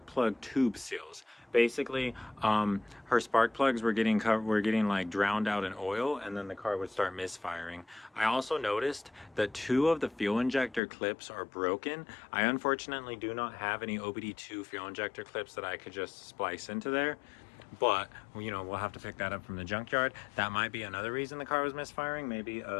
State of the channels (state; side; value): drops out; right; at 10.8 s